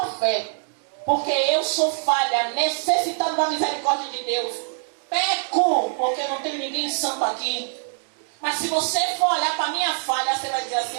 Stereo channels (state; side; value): silent; left; digital silence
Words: fé. Porque eu sou falha, necessitado da misericórdia de Deus. Peco, porque não tem ninguém santo aqui. Mas se você for olhar para a minha falha, você vai dizer assim,